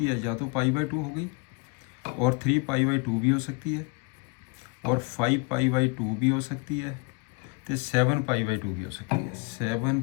है, या तो पाई बाई 2 हो गई, और 3 पाई बाई 2 भी हो सकती है, और 5 पाई बाई 2 भी हो सकती है, तो 7 पाई बाई 2 भी हो सकती है। 7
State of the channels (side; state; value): right; quieter; 31.0 dB